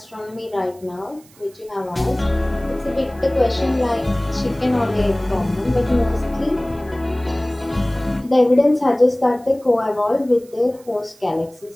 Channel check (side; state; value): right; noise; hiss, 27 dB below the sound